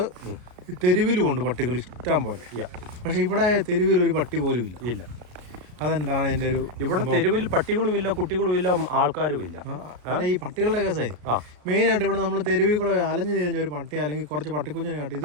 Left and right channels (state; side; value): late; left; 34 ms